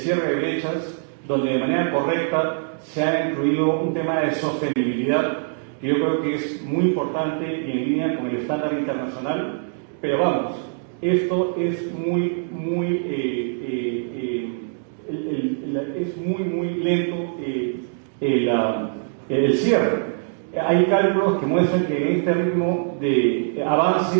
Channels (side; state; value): left; silent; digital silence